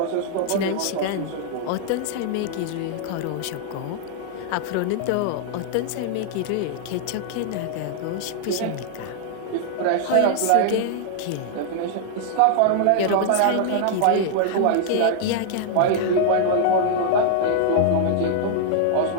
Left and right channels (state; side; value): different; both; correlation -0.01